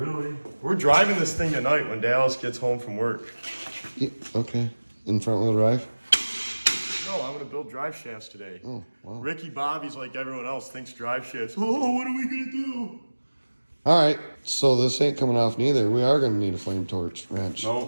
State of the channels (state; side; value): inverted; both; correlation -1.00